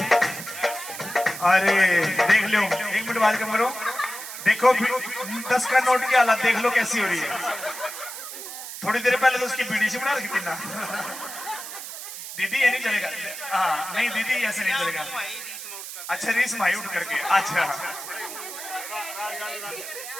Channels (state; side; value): noise; right; hiss, 10 dB below the sound